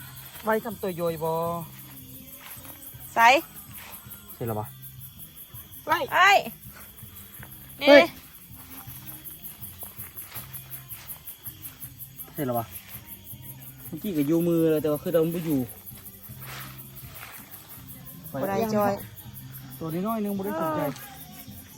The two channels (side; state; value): both; identical; correlation 1.00